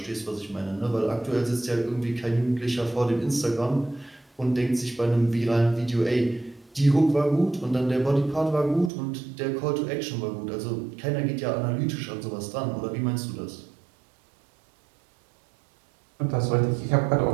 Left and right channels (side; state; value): left; drops out; at 8.9 s